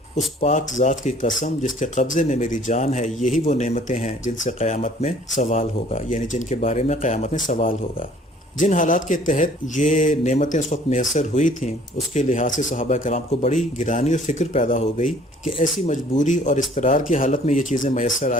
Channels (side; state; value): both; normal; correlation 0.56